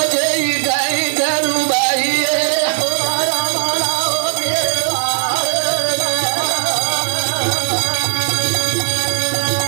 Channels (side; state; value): left; silent; digital silence